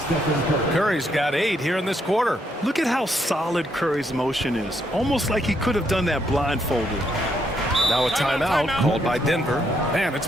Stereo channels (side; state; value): both; normal; correlation 0.75